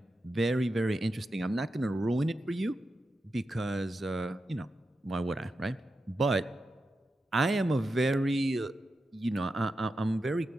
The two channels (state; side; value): normal; both; correlation 0.89